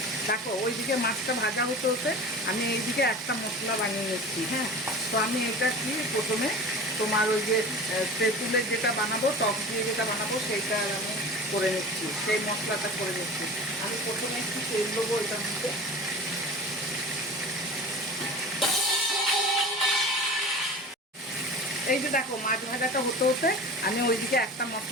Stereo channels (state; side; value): normal; both; correlation 0.36